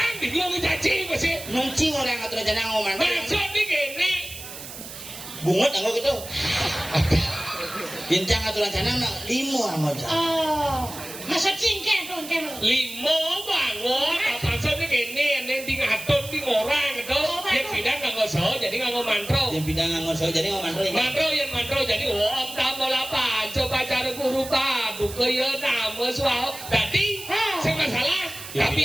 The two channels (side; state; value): right; noise; hiss, 12 dB below the sound